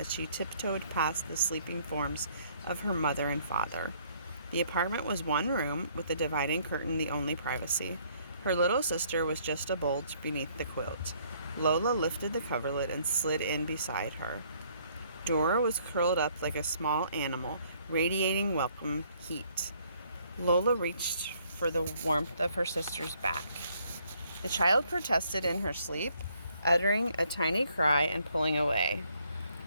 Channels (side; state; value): both; inverted; correlation -0.65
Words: she tiptoed past the sleeping forms of her mother and father. The apartment was one room, with the dividing curtain the only privacy. Her little sister was just a bulge beneath the quilt. Lola lifted the coverlet and slid in beside her. Dora was curled up like a small animal, radiating welcome heat. Lola reached for the warmth of her sister's back. The child protested in her sleep, uttering a tiny cry and pulling away.